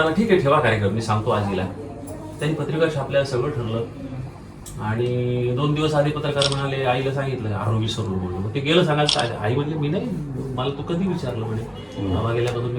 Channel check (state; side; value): identical; both; correlation 1.00